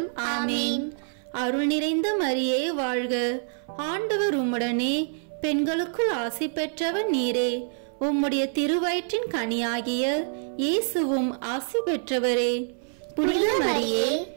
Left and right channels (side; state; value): left; silent; 58 dB below the other